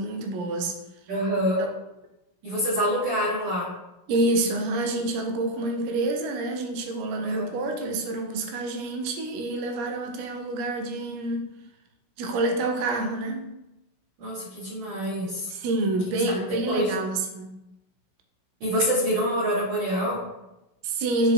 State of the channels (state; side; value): late; left; 16 ms